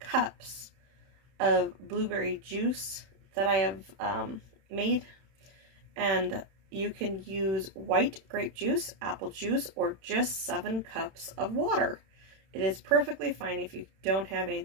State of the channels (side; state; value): left; late; 31 ms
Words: of blueberry juice that I have made. And you can use white grape juice, apple juice, or just 7 cups of water. It is perfectly fine if you don't have